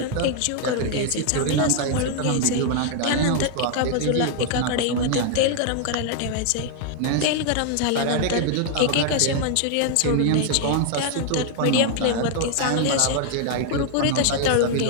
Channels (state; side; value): different; both; correlation 0.00